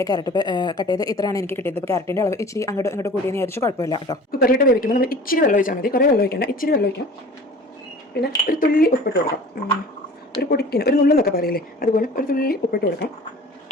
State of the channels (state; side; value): normal; both; correlation 0.43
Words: ക്യാരറ്റ് കട്ട് ചെയ്ത് ഇത്രയാണ് എനിക്ക് കിട്ടിയത്. ഇപ്പോൾ ക്യാരറ്റിൻ്റെ അളവ് ഇച്ചിരി അങ്ങോട്ട് കൂടിയെന്ന് വിചാരിച്ചു കുഴപ്പമില്ല കേട്ടോ. കുക്കറിലിട്ട് വേവിക്കുമ്പോൾ നമ്മൾ ഇച്ചിരി വെള്ളം ഒഴിച്ചാൽ മതി, കുറേ വെള്ളം ഒഴിക്കേണ്ട, ഇച്ചിരി വെള്ളം ഒഴിക്കാം. പിന്നെ ഒരു തുള്ളി ഉപ്പിട്ട് കൊടുക്കാം. ഒരു പൊടിക്കിന് ഒരു നുള്ളെന്നൊക്കെ പറയില്ലേ, അതുപോലെ ഒരു തുള്ളി ഉപ്പിട്ട് കൊടുക്കാം.